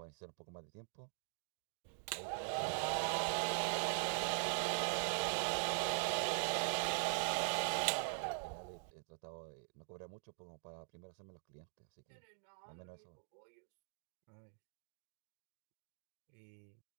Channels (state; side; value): silent; left; digital silence